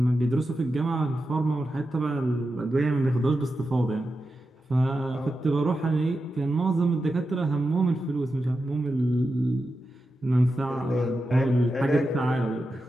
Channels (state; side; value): normal; both; correlation 0.90